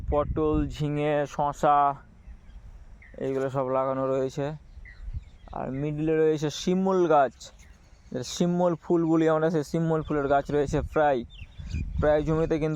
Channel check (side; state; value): both; identical; correlation 1.00